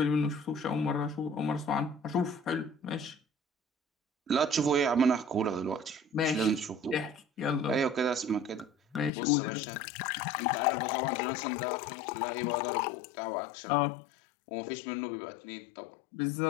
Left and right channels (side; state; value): right; drops out; at 9.1 s